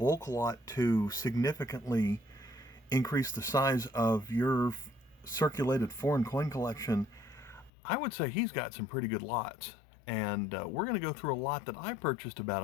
lot to significantly increase the size of your circulated foreign coin collection, I would say he's got some pretty good lots. And we're going to go through a lot that I purchased about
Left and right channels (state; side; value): drops out; right; at 7.7 s